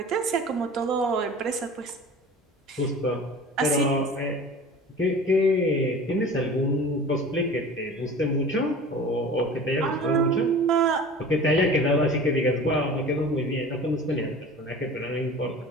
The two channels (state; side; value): normal; both; correlation 0.39